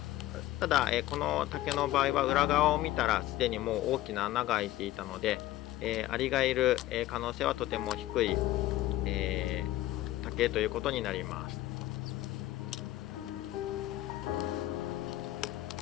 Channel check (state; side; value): quieter; right; 15.2 dB